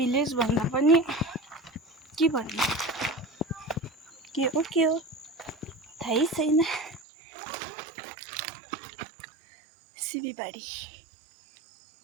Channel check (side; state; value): left; drops out; at 7.0 s